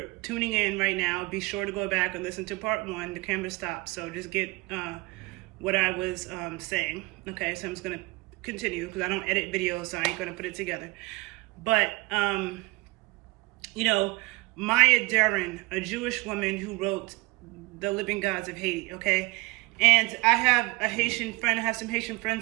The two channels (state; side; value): quieter; left; 24.1 dB